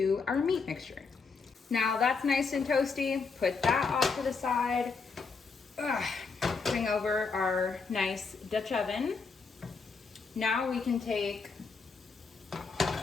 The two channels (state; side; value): quieter; right; 4.9 dB